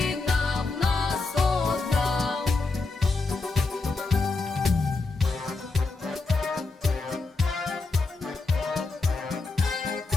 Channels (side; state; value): right; quieter; 3.7 dB